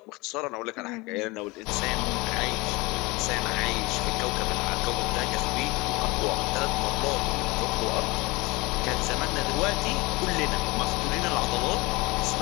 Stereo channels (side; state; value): right; quieter; 24.0 dB